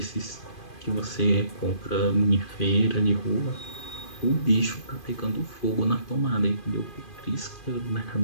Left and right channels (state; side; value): late; right; 2.5 ms